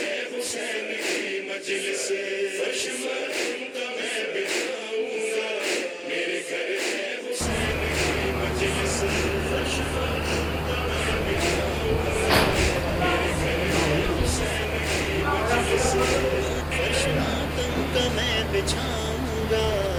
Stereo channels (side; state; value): both; identical; correlation 1.00